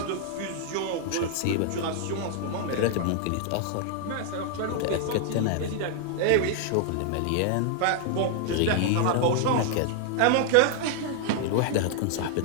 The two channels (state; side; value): different; both; correlation 0.00